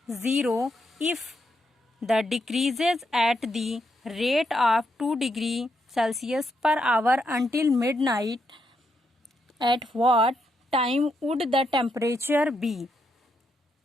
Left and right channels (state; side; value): normal; both; correlation 0.80